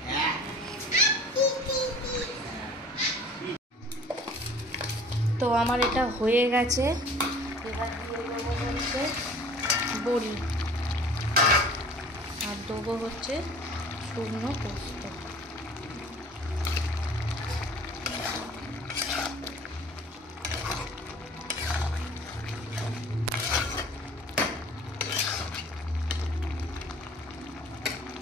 তো আমার এটা হয়ে গেছে। এবার দিয়ে দেবো হচ্ছে বড়ি, আর দেবো হচ্ছে শুকনো পোস্ত।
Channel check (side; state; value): both; normal; correlation 0.48